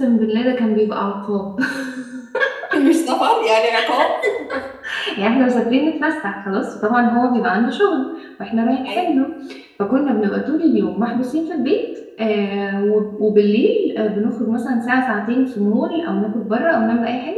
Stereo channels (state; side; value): identical; both; correlation 1.00